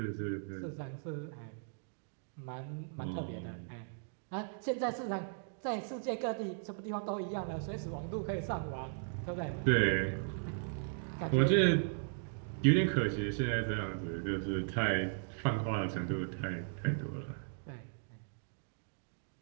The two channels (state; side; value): silent; left; digital silence